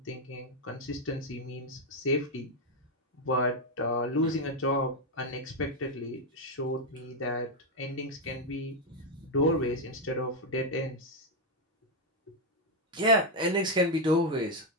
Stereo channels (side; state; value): both; normal; correlation 0.03